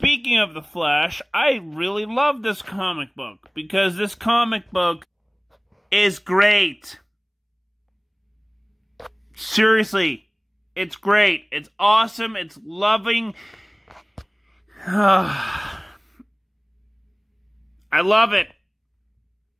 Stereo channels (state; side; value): identical; both; correlation 1.00